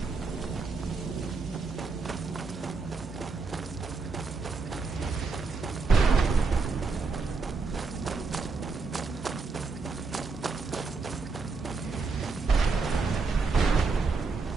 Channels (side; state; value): left; quieter; 4.3 dB